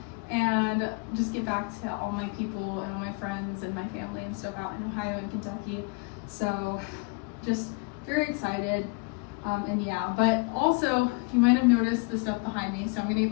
and just get back to all my people and all my friends and my family and stuff out in Ohio and Kentucky. So just very excited. And yeah, but also you might have noticed the stuff behind me, so I'm gonna get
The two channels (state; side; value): quieter; right; 30.4 dB